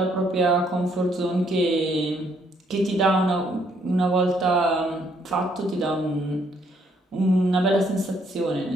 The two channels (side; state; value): both; normal; correlation 0.69